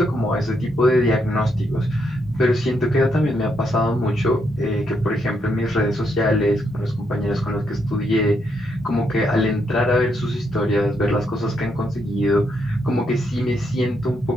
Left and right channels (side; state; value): both; normal; correlation 0.78